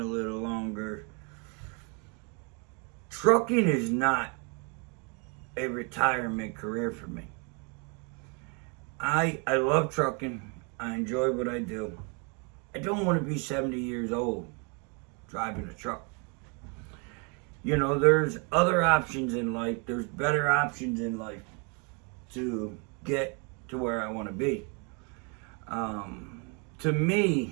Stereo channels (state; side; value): quieter; left; 34.9 dB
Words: little longer, trucking is not a retirement career for me. I love trucking. I enjoy what I do. I don't want to be 70 years old driving a truck. There's other options in life. There's better options in life to get to where I want to be. To